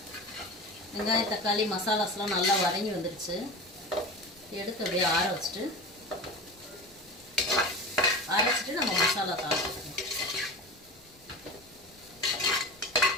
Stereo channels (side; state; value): left; noise; rumble, 28 dB below the sound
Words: வெங்காயம், தக்காளி, மசாலாஸ்லாம் நல்லா வதங்கி வந்துடுச்சு. எடுத்து அப்படியே அரைச்சிட்டு நம்ம மசாலா தாளிச்சிக்கணும்.